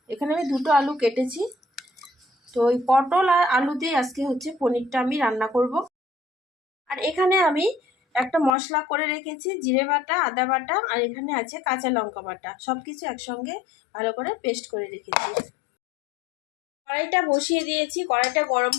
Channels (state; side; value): drops out; right; at 8.5 s